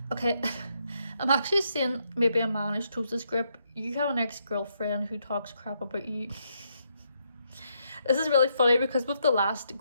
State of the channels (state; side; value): inverted; both; correlation -0.77